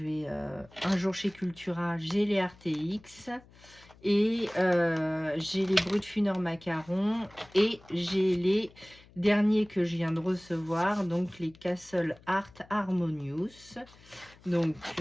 vais un jour chez Cultura. J'ai les RTX et j'ai les Brutfuner Macaron et j'ai les derniers que je viens de recevoir, donc les Castle Art Harmonious. Donc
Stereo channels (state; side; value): noise; left; hum, 25 dB below the sound